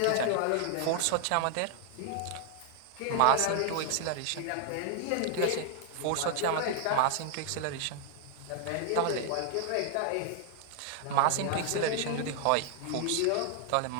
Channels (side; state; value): both; different; correlation 0.00